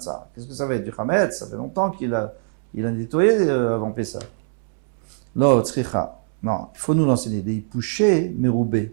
Qu'est-ce que ça va être? Du chametz? Ça fait longtemps qu'il a nettoyé avant Pessah. Lo, tzricha. Non, il faut nous l'enseigner. Des pouchés,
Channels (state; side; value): silent; left; 64 dB below the other